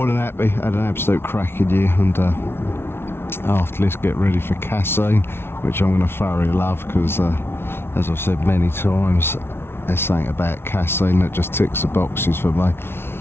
than happy. Had an absolute cracking year, and after let's get ready for casting, which I'm going to thoroughly love because, as I've said many times, there's something about casting that just ticks the boxes for me.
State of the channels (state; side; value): late; right; 0.12 ms